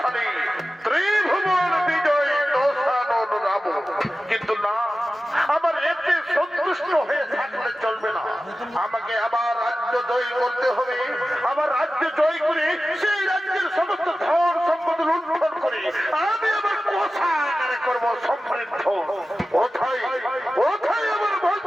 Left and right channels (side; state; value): both; normal; correlation 0.95